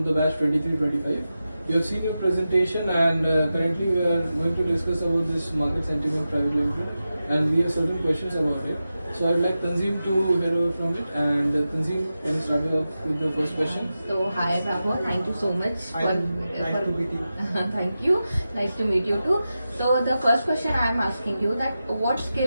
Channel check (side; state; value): both; inverted; correlation -0.92